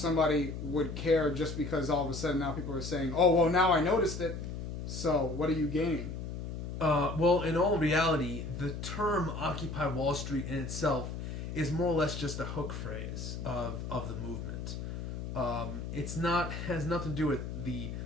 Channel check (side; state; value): left; noise; hum, 6 dB below the sound